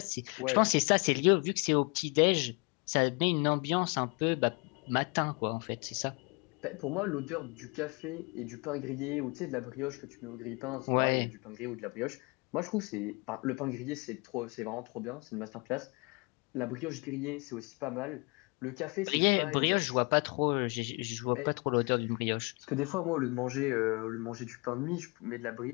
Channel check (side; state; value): right; quieter; 29.9 dB